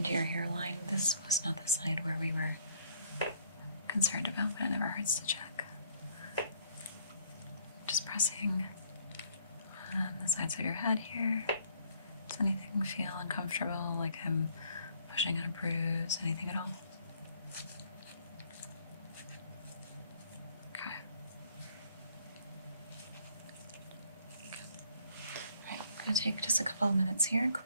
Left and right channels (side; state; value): both; inverted; correlation -0.63